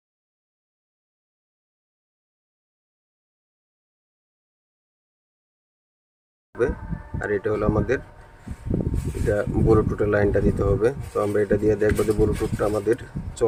আর এটা হলো আমাদের, এটা ব্লুটুথের লাইনটা দিতে হবে। তো আমরা এটা দিয়ে দেখবো যে ব্লুটুথটা আমাদের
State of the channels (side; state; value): both; identical; correlation 1.00